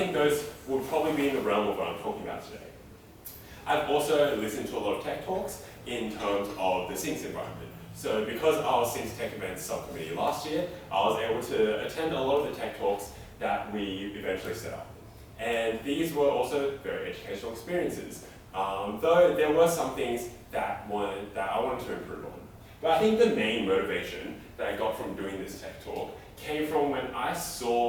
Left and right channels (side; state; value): both; identical; correlation 1.00